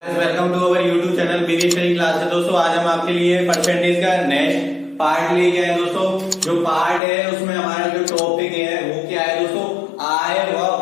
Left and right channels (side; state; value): right; drops out; at 7.0 s